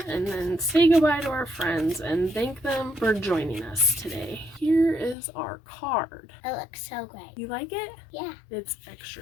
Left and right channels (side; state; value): right; drops out; at 5.2 s